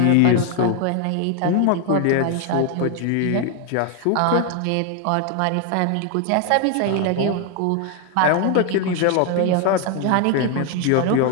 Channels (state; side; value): different; both; correlation 0.01